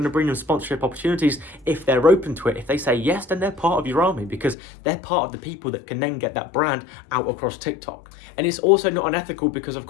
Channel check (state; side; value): drops out; right; at 4.5 s